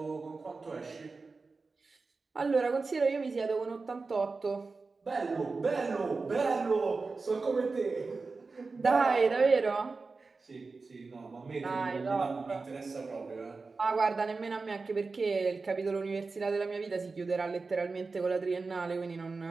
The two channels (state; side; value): quieter; left; 4.1 dB